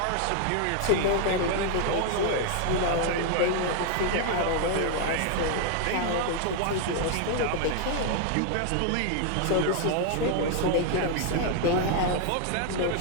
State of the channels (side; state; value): both; different; correlation 0.00